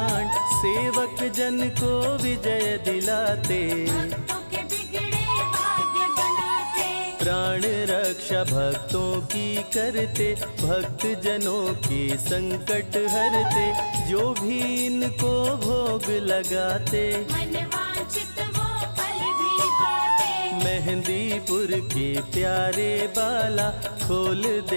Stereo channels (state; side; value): inverted; both; correlation -1.00